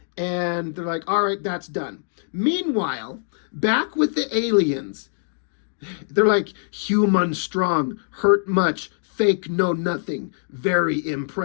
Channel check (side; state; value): right; silent; digital silence